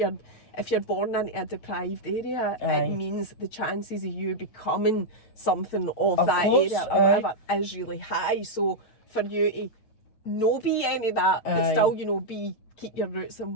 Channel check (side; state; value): right; late; 9.1 ms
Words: born into a deprived area, it means the chances of you becoming something of that area or whatever is really high. So for you to not be any of that, but still, you know, keep your roots